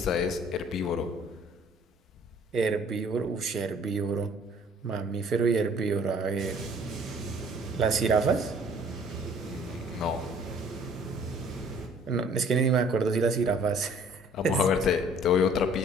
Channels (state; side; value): normal; both; correlation 0.55